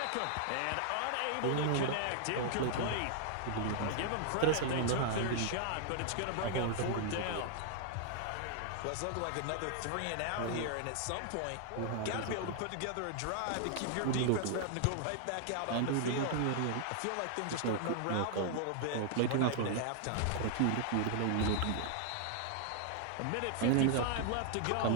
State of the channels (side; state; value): both; different; correlation -0.01